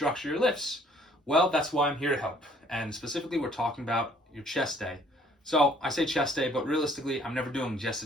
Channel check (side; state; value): both; normal; correlation 0.60